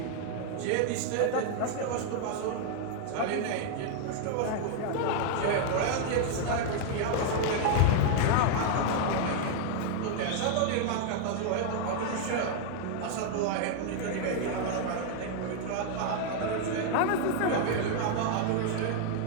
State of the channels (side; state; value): both; different; correlation 0.00